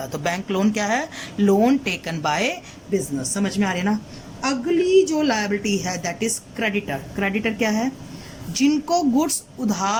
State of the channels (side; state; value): both; identical; correlation 1.00